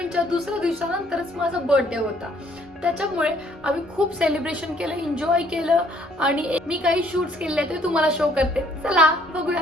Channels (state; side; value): normal; both; correlation 0.63